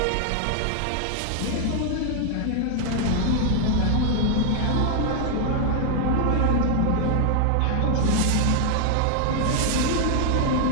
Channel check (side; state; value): both; different; correlation 0.00